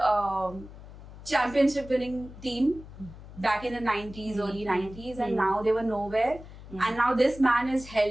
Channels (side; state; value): left; noise; hum, 16 dB below the sound